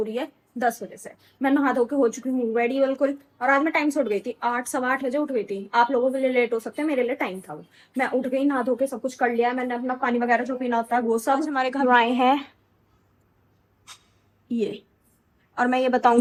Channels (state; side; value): identical; both; correlation 1.00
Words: रही है 10 बजे से। मैं नहा धो के हो चुकी हूँ रेडी बिल्कुल। और आज मैं टाइम से उठ गई थी, 8 सवा 8 बजे उठ गई थी। आप लोगों के लिए लेट हो सकते हैं, मेरे लिए टाइम था वो। मैं उठ गई, नहा धो के सब कुछ कर लिया। मैंने अपना पानी वगैरह जो पीना होता है वो सब। हमारे घर आए हैं ये, और मैं ये